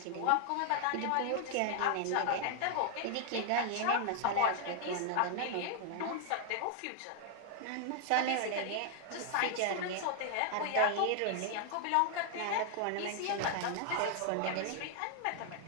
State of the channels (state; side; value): different; both; correlation 0.00